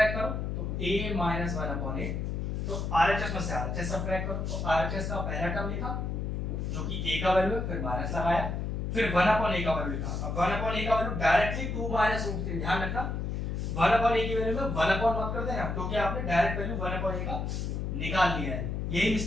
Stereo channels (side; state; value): left; noise; hum, 2 dB below the sound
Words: करो तो a माइनस 1/a, तो RHS में से RHS सबट्रैक्ट करो, तो RHS का पहला टर्म लिखा जो कि a का वैल्यू है, फिर माइनस लगाया, फिर 1/a का वैल्यू लिखा। अब 1/a का वैल्यू डायरेक्टली 2 माइनस √3, ध्यान रखना 1/a की वैल्यू में 1 मत कर देना, क्योंकि आपने डायरेक्ट वैल्यू 1/a का निकाल लिया है। यही